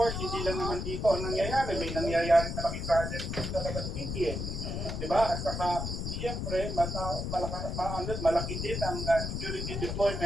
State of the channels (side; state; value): left; noise; rumble, 3 dB below the sound